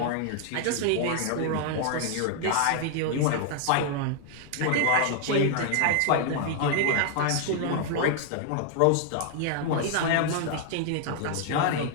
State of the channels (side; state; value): both; different; correlation 0.00